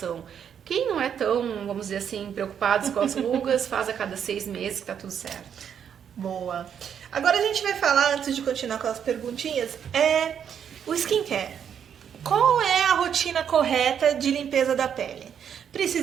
Quem não é tão, vamos dizer assim, preocupado com as rugas, faz a cada 6 meses que tá tudo certo. Boa. Agora a gente vai falar, antes de continuar com as perguntinhas, o skincare. qual é a rotina correta de limpeza da pele?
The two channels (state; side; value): quieter; left; 8.3 dB